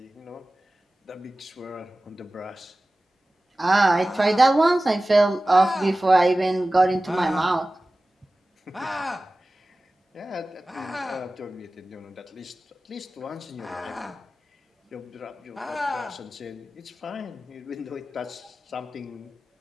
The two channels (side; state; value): both; normal; correlation 0.97